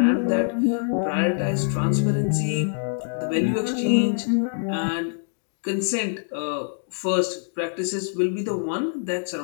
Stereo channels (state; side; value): silent; right; 62 dB below the other